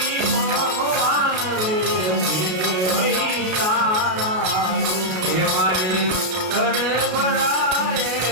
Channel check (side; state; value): left; late; 33 ms